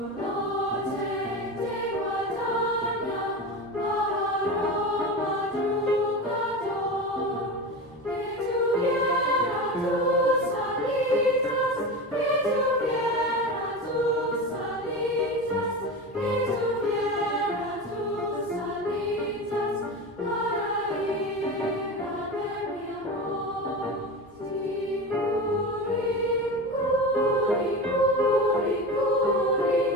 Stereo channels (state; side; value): normal; both; correlation 0.26